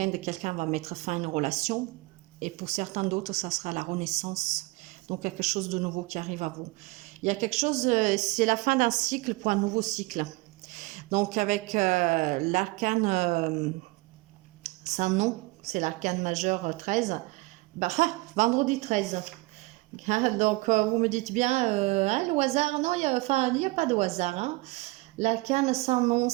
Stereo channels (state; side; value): quieter; left; 23.7 dB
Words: quelqu'un va mettre fin à une relation. Et pour certains d'autres, ça sera la renaissance. Donc quelque chose de nouveau qui arrive à vous. Il y a quelque chose, c'est la fin d'un cycle pour un nouveau cycle. Donc avec l'arcane sans nom, c'est l'arcane majeur 13. Bah, vendredi 13. Donc, vous me dites bien, hein, le hasard, non, il n'y a pas de hasard. Hein. L'arcane sans nom,